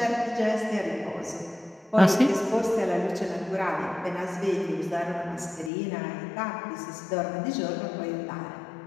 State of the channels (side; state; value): right; drops out; at 5.7 s